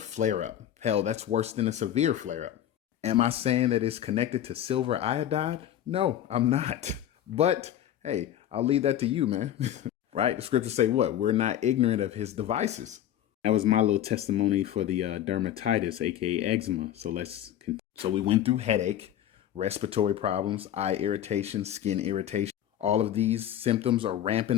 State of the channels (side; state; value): right; quieter; 11.3 dB